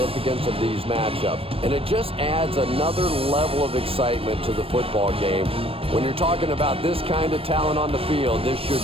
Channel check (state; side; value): late; left; 0.28 ms